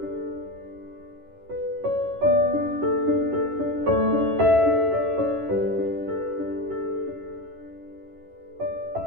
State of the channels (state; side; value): late; left; 11 ms